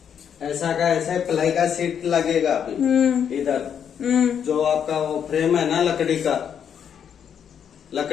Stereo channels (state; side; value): quieter; right; 8.2 dB